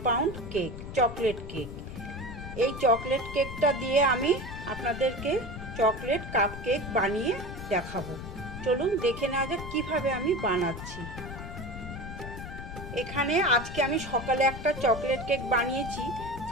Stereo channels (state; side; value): noise; left; rumble, 9 dB below the sound